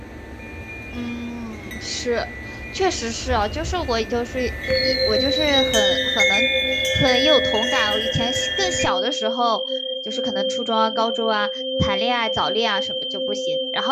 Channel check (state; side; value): identical; both; correlation 1.00